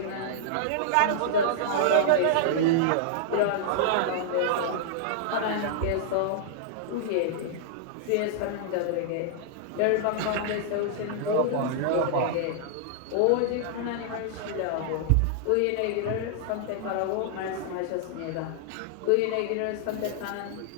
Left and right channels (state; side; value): different; both; correlation -0.01